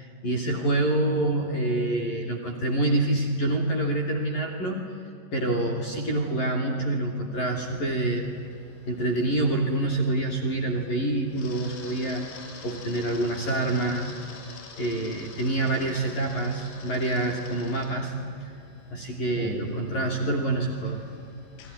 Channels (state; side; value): late; right; 11 ms